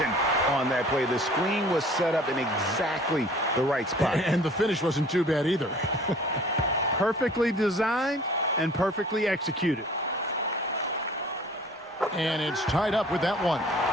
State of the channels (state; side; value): normal; both; correlation 0.49